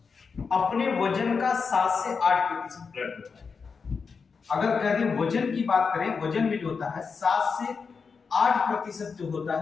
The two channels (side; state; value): right; quieter; 5.3 dB